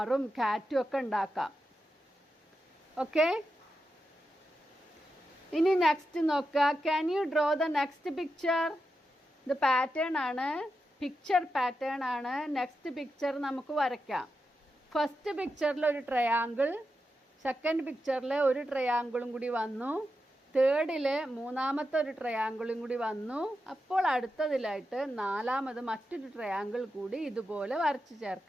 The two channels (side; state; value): both; normal; correlation 0.88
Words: കാറ്റും ഒക്കെ ഉണ്ടാക്കാം. ഓക്കെ, ഇനി നെക്സ്റ്റ് നോക്കുക. Can you draw the next picture. ഇത് പാറ്റേൺ ആണ്, പിക്ചർ പാറ്റേൺ ആണ്. നെക്സ്റ്റ് പിക്ചർ നമുക്ക് വരയ്ക്കാം. ഫസ്റ്റ് പിക്ചറിൽ ഒരു ട്രയാങ്കിൾ, സെക്കൻഡ് പിക്ചറിൽ ഒരു ട്രയാങ്കിളും കൂടി വന്നു, തേർഡിൽ മൂന്നാമത്തെ ഒരു ട്രയാങ്കിളും കൂടി വന്നു. അപ്പോൾ അടുത്തതിലായിട്ട് 4ാമത് മറ്റൊരു ട്രയാങ്കിൾ കൂടി ഇതുപോലെ വരച്ച്